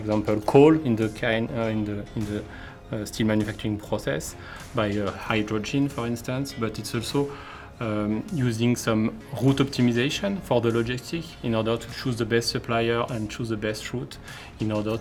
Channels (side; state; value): both; identical; correlation 1.00